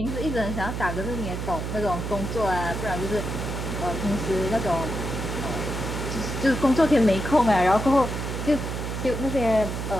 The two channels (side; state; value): right; noise; hum, 4 dB below the sound